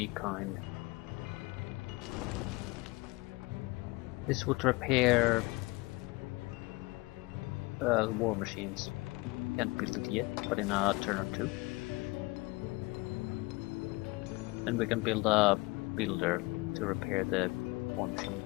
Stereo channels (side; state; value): right; quieter; 23.6 dB